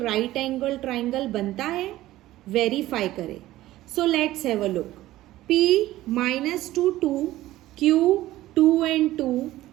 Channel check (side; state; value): left; quieter; 15.7 dB